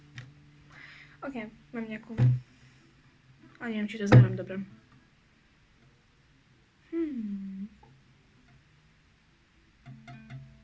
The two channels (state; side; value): identical; both; correlation 1.00